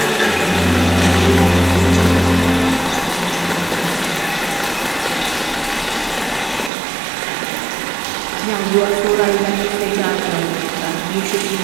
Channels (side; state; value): left; drops out; at 6.7 s